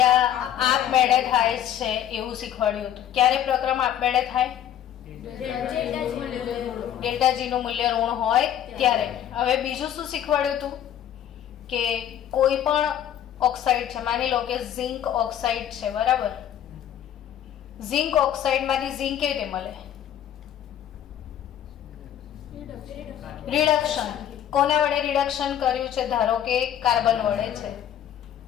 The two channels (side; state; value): right; quieter; 10.5 dB